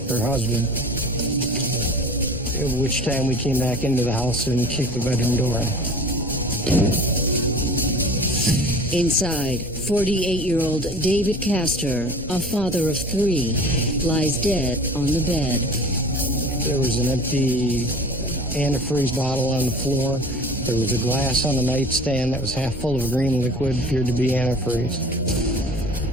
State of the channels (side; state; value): both; normal; correlation 0.41